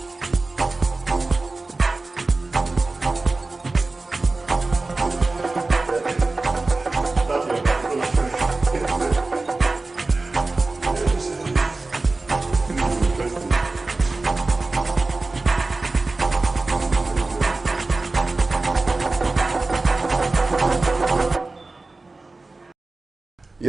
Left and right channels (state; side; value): quieter; left; 3.4 dB